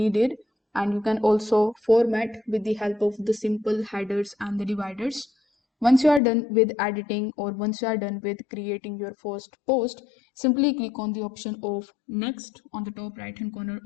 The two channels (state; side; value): drops out; right; at 6.2 s